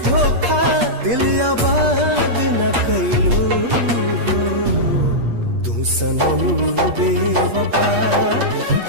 धोखा। दिल आबाद न कैलू हो। तू सनम बेवफा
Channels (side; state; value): left; late; 8.4 ms